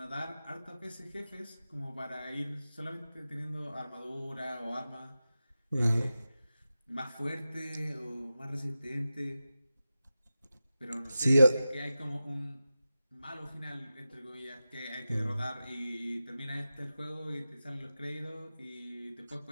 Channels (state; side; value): inverted; both; correlation -0.93